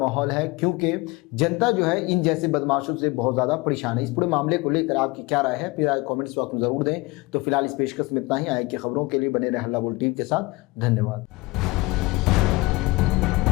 है, क्योंकि जनता जो है इन जैसे बदमाशों से बहुत ज़्यादा परेशान है। इस पूरे मामले को लेकर आपकी क्या राय है, फिर कमेंट्स बॉक्स में ज़रूर दें। तो फिलहाल इस पेशकश में इतना ही। आए की खबरों के लिए बने रहे हल्ला बोल टीवी के साथ। धन्यवाद।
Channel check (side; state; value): right; quieter; 23.3 dB